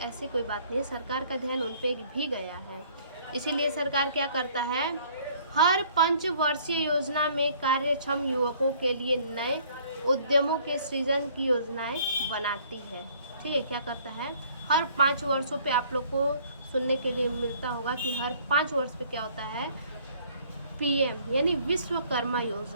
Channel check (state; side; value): inverted; both; correlation -0.58